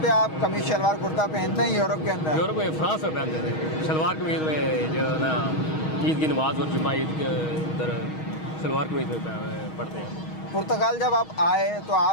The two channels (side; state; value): right; late; 6.3 ms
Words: पे आप कमीज शलवार कुर्ता पहनते हैं यूरोप के अंदर? यूरोप में फ्रांस में पहनते थे शलवार कमीज में, जो है ना ईद की नमाज और जुम्मा ईद के उधर शलवार कमीज में पढ़ते हैं। पुर्तगाल जब आप आए तो